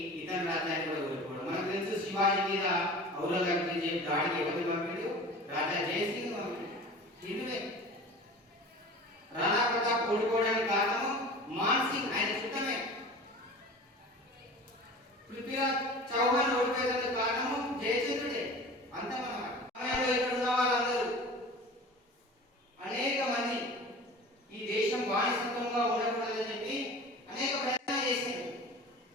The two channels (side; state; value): both; normal; correlation 0.38